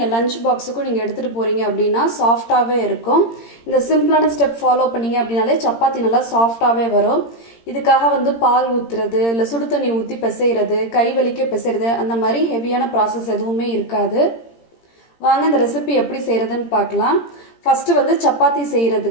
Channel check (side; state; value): right; late; 17 ms